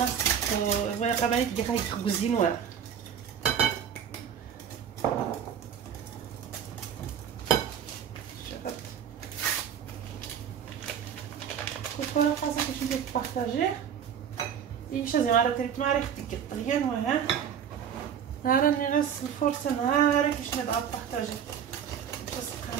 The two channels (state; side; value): quieter; left; 8.4 dB